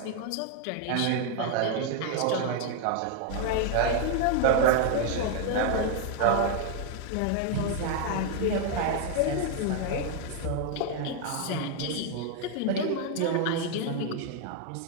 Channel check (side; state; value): both; different; correlation 0.01